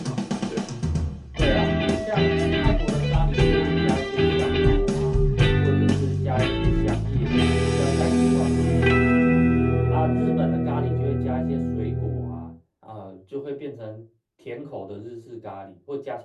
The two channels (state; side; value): identical; both; correlation 1.00